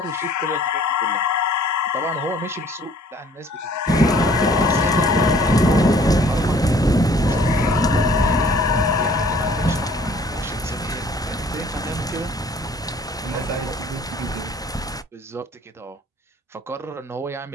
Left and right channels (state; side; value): normal; both; correlation 0.56